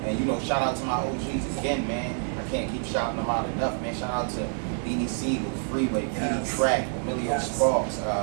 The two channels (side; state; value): left; silent; 58 dB below the other